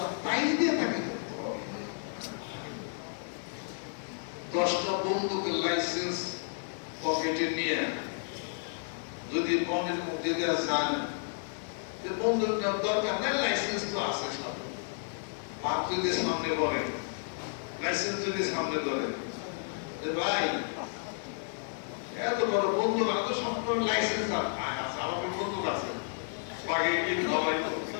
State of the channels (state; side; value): silent; right; 57 dB below the other